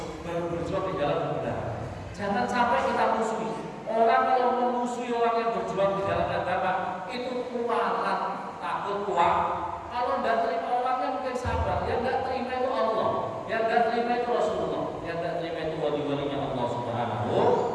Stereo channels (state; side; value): identical; both; correlation 1.00